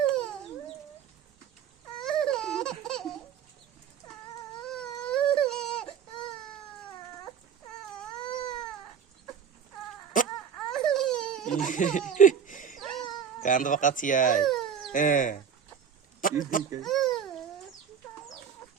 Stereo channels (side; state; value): left; quieter; 7.5 dB